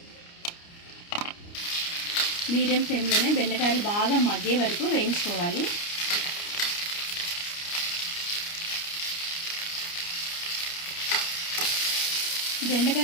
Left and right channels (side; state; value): right; late; 29 ms